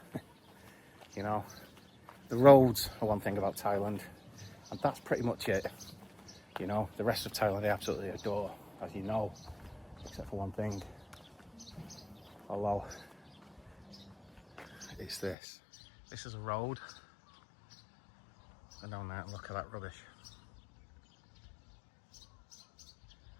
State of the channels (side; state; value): right; drops out; at 15.4 s